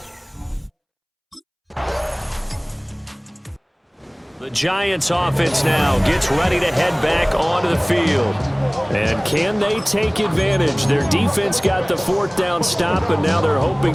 The Giants offense now gets ready to head back onto the field. And can they take advantage? Their defense got the 4th down stop, and now they're hoping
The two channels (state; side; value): identical; both; correlation 1.00